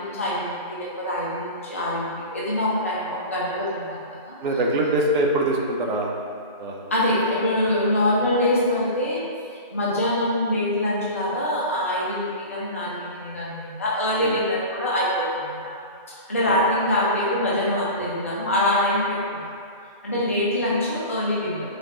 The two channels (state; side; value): inverted; both; correlation -0.30